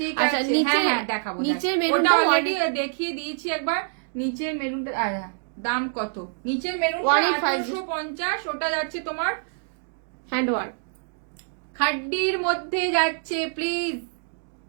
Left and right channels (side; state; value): left; silent; digital silence